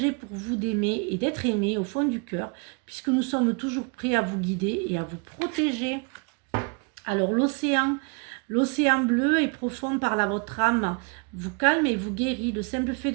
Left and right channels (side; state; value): left; quieter; 34.1 dB